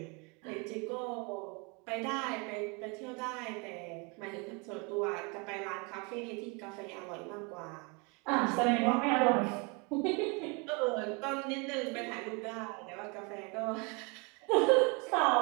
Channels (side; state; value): left; quieter; 30.9 dB